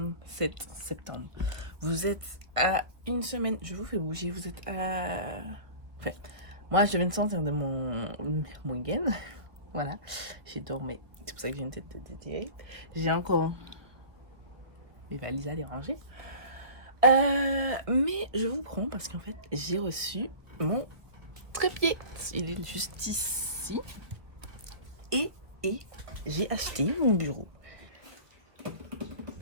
septembre. Vous êtes à une semaine, je vous fais bouger, vous êtes à... Enfin, moi je viens de sortir de mon week-end. Voilà, j'ai dormi, c'est pour ça que j'ai une tête de déterrée. J'ai encore mes valises à déranger. Mais je vous prends parce qu'en fait j'ai reçu mon trépied. Il est juste ici. Et j'ai acheté mon bureau.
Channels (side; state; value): left; late; 1.3 ms